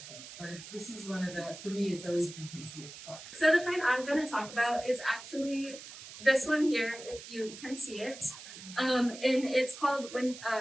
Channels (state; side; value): noise; right; hiss, 14 dB below the sound